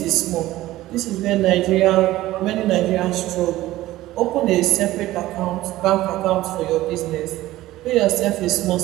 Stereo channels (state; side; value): quieter; left; 16.2 dB